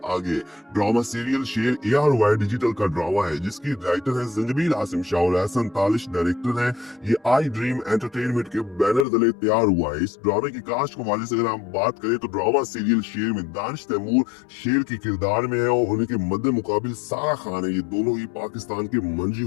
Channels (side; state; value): right; drops out; at 9.1 s